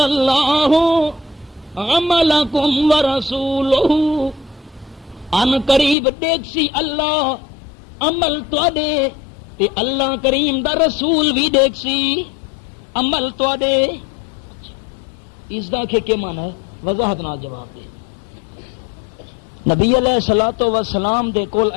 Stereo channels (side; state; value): right; drops out; at 6.0 s